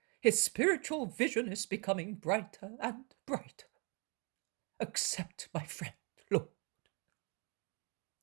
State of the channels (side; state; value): left; quieter; 33.5 dB